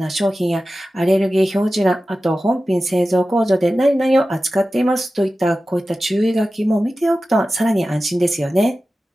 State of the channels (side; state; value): both; normal; correlation 0.94